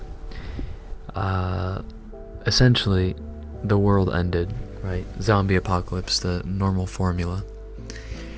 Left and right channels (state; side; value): identical; both; correlation 1.00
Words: essentially the world ended, right? Zombie apocalypse, the normal formula.